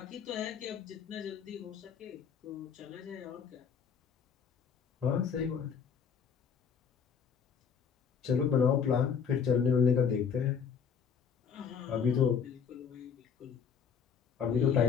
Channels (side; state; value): right; quieter; 7.0 dB